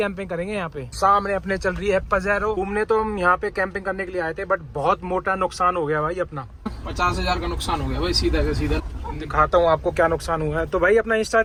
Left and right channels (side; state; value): both; identical; correlation 1.00